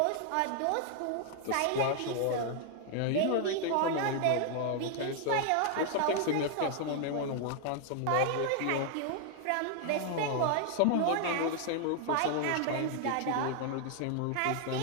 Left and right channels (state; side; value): different; both; correlation 0.00